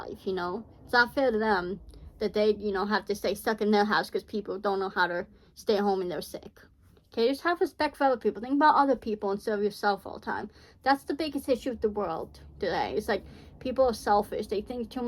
you know? It's not fair to them that they, you know, have to stay stuck in their house because people don't know how to stay home and they're sick. Okay, just have respect for other people. Think about other people instead of yourself all the time. That's the biggest issue with the world today. It's like, people are selfish. They think too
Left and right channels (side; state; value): both; identical; correlation 1.00